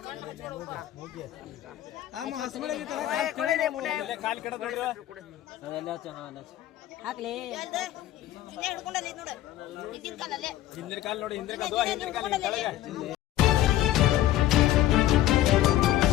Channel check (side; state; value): right; quieter; 13.6 dB